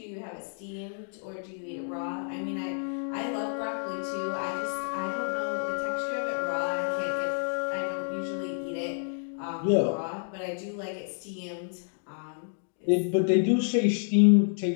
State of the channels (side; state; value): right; silent; digital silence